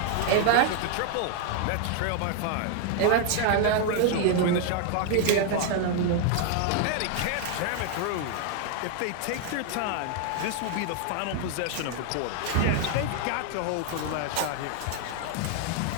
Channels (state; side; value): different; both; correlation 0.00